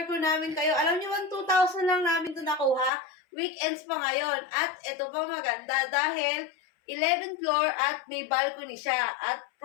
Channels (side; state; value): right; drops out; at 2.9 s